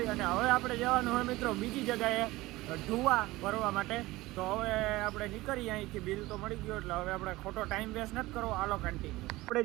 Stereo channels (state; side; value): quieter; left; 19.2 dB